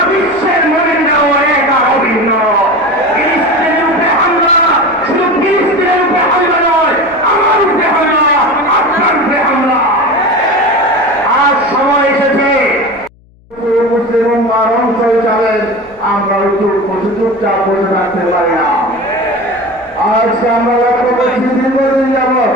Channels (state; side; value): noise; left; hum, 30 dB below the sound